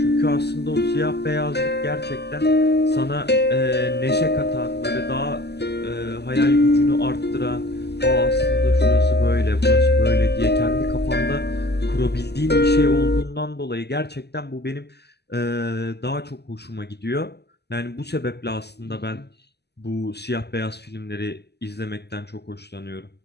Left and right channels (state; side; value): late; right; 0.49 ms